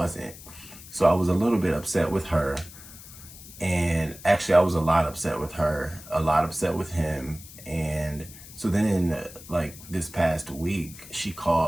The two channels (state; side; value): noise; left; hiss, 17 dB below the sound